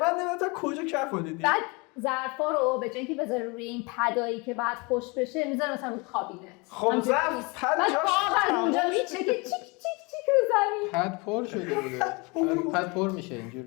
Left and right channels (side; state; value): right; quieter; 28.2 dB